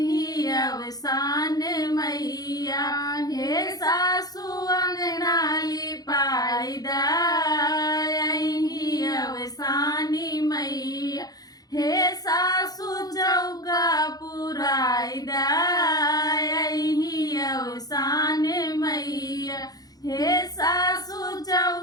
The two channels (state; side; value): late; right; 0.18 ms